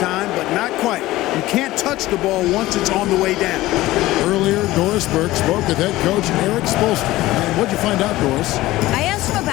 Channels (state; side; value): quieter; right; 17.3 dB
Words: but not quite. You can't touch the ball once it's on the way down. Earlier, Doris Burke spoke with head coach Eric Spoelstra. And what'd you find out, Doris? I asked him